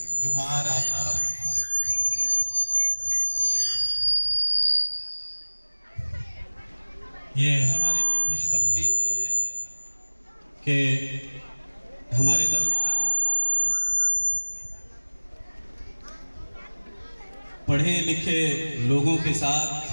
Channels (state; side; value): inverted; both; correlation -1.00